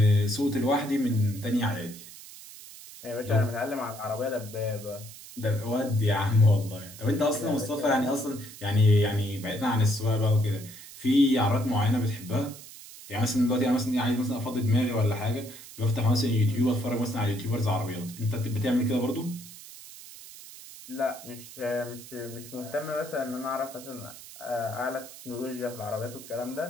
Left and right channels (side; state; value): right; noise; hiss, 16 dB below the sound